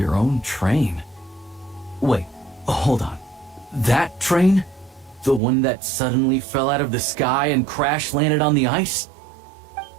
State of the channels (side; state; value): left; drops out; at 5.4 s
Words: own train? Wait, hold on. That train? The one that suddenly fell out of the sky and crash landed on the ice?